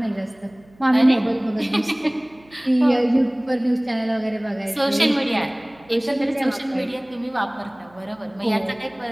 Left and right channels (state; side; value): noise; right; hum, 28 dB below the sound